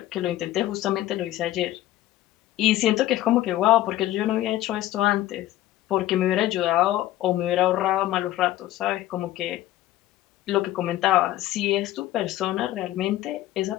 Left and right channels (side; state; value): right; quieter; 14.6 dB